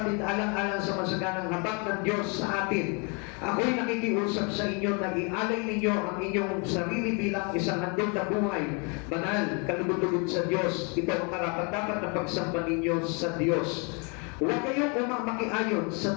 alang-alang sa masaganang habag ng Diyos sa atin, ako'y nakikiusap sa inyo na ialay ninyo ang inyong sarili bilang isang handog na buhay, banal, kalugod-lugod sa Diyos. Ito ang karapat-dapat na pagsamba ninyo sa Diyos. Huwag kayong umamakiayon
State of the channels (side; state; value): right; quieter; 33.7 dB